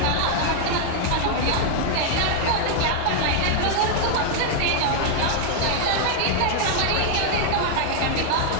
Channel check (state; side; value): different; both; correlation 0.00